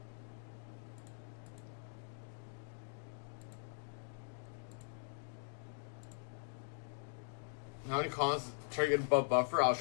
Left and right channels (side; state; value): right; silent; digital silence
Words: How many cons try to get above buffer? I was